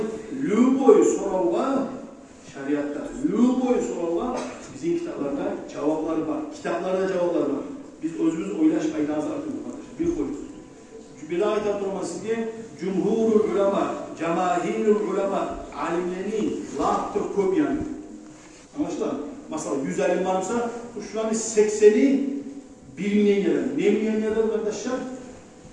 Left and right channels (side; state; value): both; identical; correlation 1.00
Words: lü boyu soralga, şariat sorular bizim kitaplarda cevapları var. Kitaplarda cevaplar var. Biz özümüz oylaş aydazı atıyoruz arkadaşlar. Bir koyuyoruz. Bir ayet atılması diye cumhurul ulema, cemahirul ulema alimlerini lahtır köp yani. Anlaşılır mı? Mesela 100 alim varsa şuranın 80'i bilmeyen yerler. Ne bilmeyen yerler arkadaşlar?